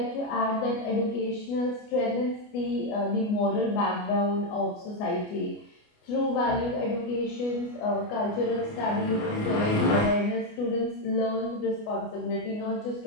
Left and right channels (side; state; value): right; late; 29 ms